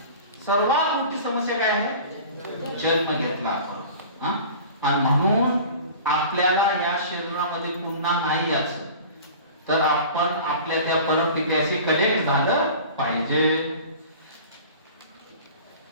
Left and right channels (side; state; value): both; inverted; correlation -0.40